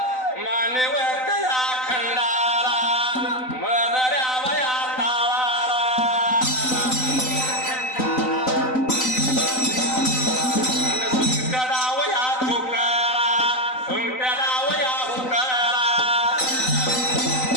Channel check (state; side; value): late; right; 3.9 ms